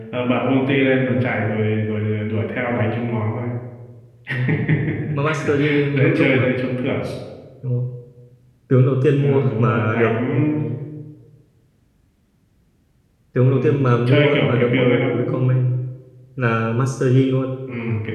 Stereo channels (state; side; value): identical; both; correlation 1.00